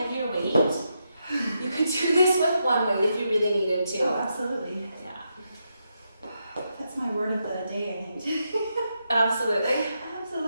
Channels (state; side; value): inverted; both; correlation -0.83